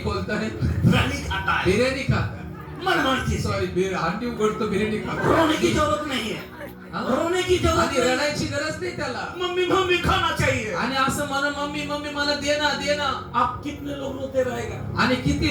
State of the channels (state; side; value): identical; both; correlation 1.00